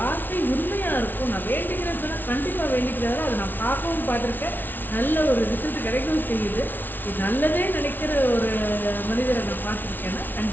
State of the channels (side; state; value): right; late; 0.090 ms